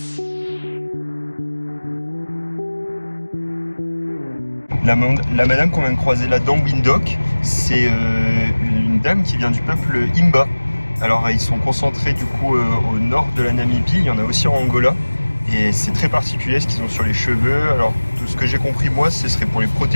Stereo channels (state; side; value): inverted; both; correlation -1.00